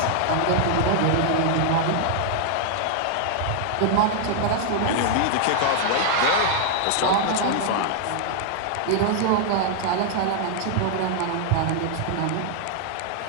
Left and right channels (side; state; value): both; different; correlation 0.00